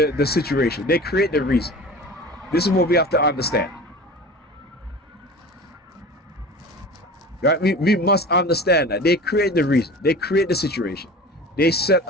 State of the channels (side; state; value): both; normal; correlation 0.37